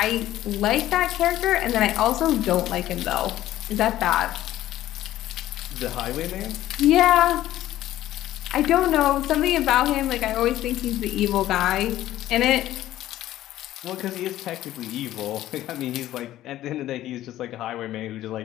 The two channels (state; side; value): quieter; right; 14.0 dB